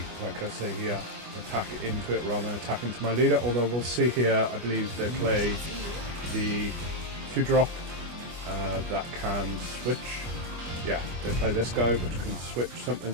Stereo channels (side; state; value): left; late; 25 ms